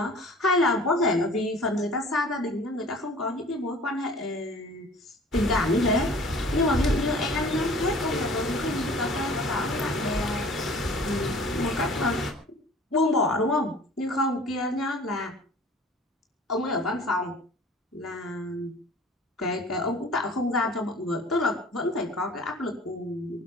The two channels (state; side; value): normal; both; correlation 0.46